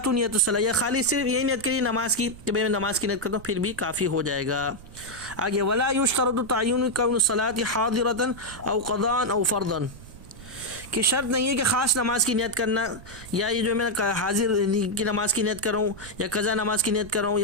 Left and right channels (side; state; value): right; noise; rumble, 18 dB below the sound